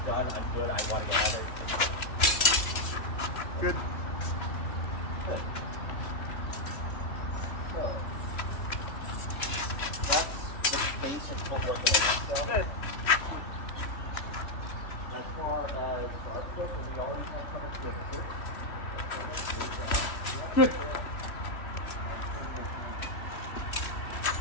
done, I'm good, I want to get out of it. Good. Good. So, that's the basic footwork of the Good. As far as our foot, we already have covered swivel here. Good.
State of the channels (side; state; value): right; late; 3.1 ms